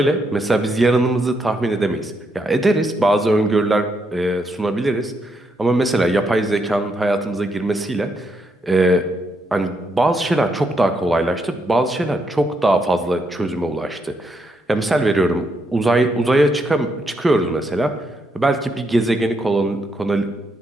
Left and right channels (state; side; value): normal; both; correlation 0.78